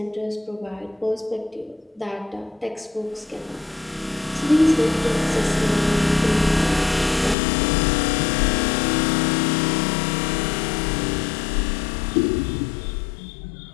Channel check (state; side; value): drops out; right; at 7.4 s